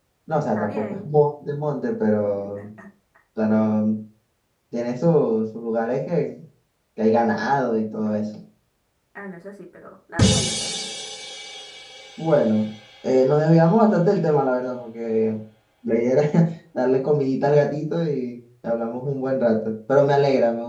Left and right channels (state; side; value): identical; both; correlation 1.00